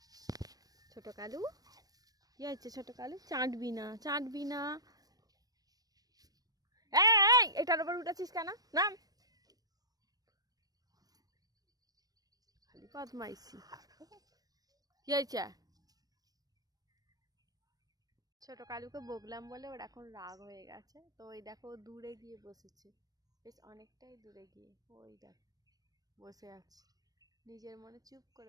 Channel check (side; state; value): left; late; 0.18 ms